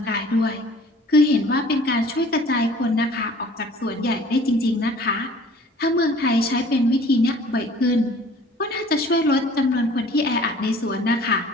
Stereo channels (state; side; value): normal; both; correlation 0.50